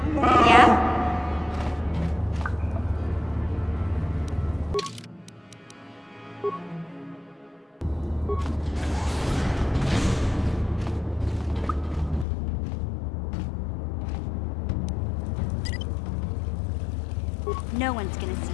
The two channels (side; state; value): right; drops out; at 12.2 s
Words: Yeah? No one's gonna see